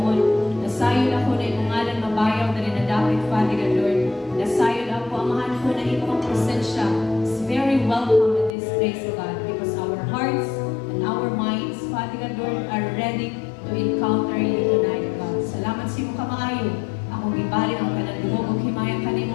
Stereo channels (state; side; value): drops out; right; at 8.6 s